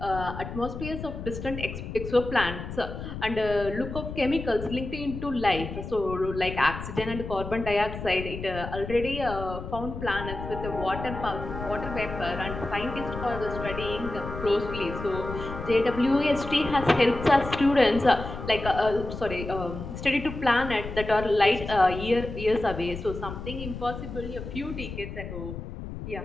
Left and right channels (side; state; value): left; noise; rumble, 8 dB below the sound